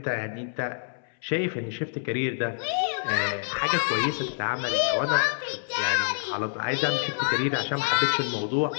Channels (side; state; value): right; silent; 60 dB below the other